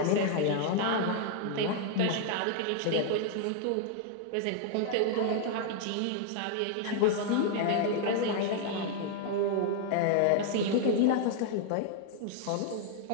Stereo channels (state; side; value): different; both; correlation 0.00